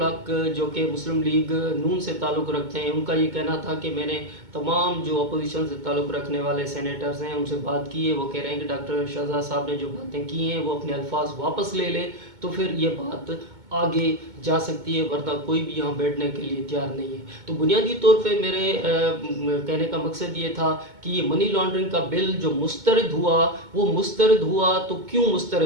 جو کہ مسلم لیگ نون سے تعلق رکھتے ہیں، ان کا یہ کہنا تھا کہ میں نے تمام جو اپوزیشن سے تعلق رکھنے والے سینیٹرز ہیں ان سے بات کی ہے، وہ کہہ رہے ہیں کہ ڈاکٹر شہزاد صاحب نے جو باتیں کی ہیں وہ اپنے الفاظ واپس لے لے تو پھر یہ بات آگے جا سکتی ہے، ورنہ کوئی بھی یہاں بیٹھنے کے لیے تیار نہیں ہے۔ تو بنیادی طور پہ میرے کہنے کا مقصد یہ تھا کہ یہ منی لانڈرنگ کا بل جو مسترد ہوا، وہ مسترد ہوا تو کیوں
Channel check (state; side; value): late; left; 2.2 ms